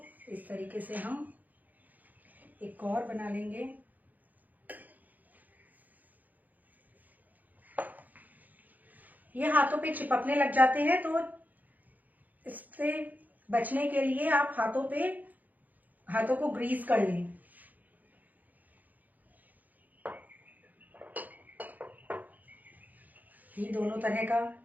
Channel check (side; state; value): left; late; 0.082 ms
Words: इस तरीके से हम एक और बना लेंगे। ये हाथों पे चिपकने लग जाते हैं, तो इससे बचने के लिए आप हाथों को ग्रीस कर लें। ये दोनों तरह का